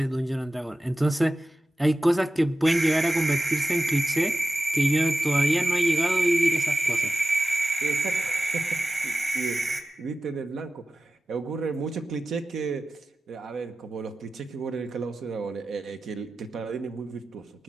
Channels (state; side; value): normal; both; correlation 0.95